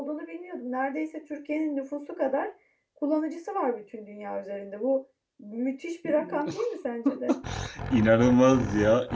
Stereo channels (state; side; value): identical; both; correlation 1.00